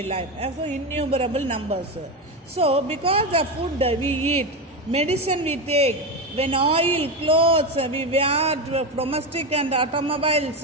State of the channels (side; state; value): both; normal; correlation 0.15